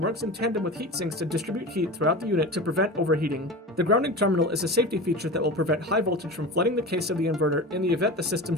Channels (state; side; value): normal; both; correlation 0.31